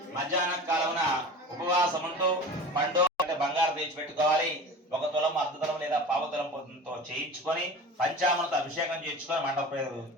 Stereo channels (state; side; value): normal; both; correlation 0.36